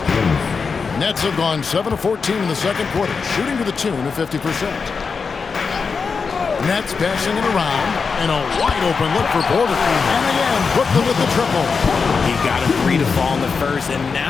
Jones. Nets have gone 7 of 14 in the second quarter, shooting to the tune of 50%. Nets passing it around, and a wide-open look for Porter. And again, Brooklyn with the triple. He got a 3 to fall in the first, and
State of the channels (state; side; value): quieter; right; 5.2 dB